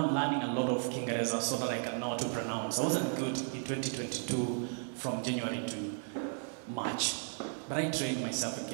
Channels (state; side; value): silent; left; 55 dB below the other